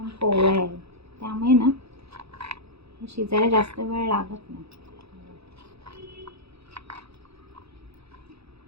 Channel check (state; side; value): late; left; 0.78 ms